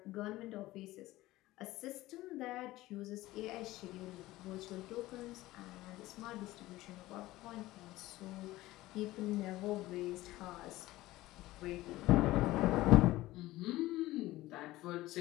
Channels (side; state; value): right; quieter; 17.5 dB